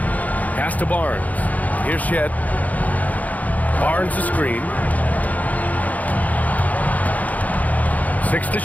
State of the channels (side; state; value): right; late; 0.077 ms